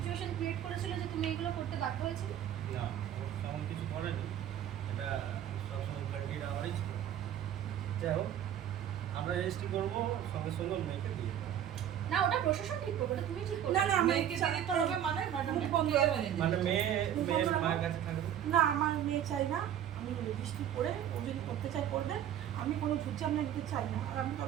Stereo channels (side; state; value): left; quieter; 10.4 dB